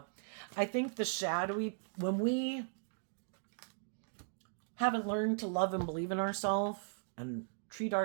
I think the shadowy, when we haven't learned to love and believe in ourselves and treat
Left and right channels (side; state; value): left; silent; digital silence